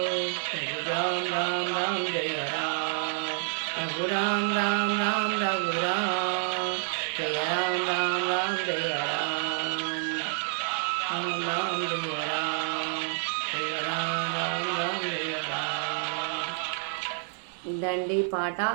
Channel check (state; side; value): silent; left; 59 dB below the other